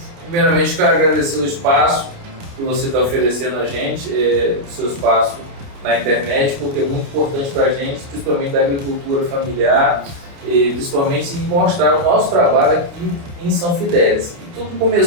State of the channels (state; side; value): late; left; 29 ms